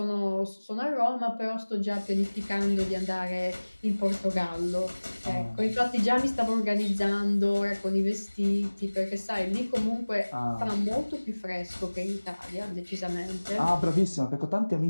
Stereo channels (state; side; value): inverted; both; correlation -1.00